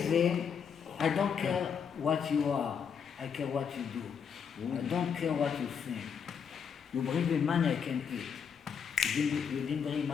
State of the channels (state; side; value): quieter; right; 7.0 dB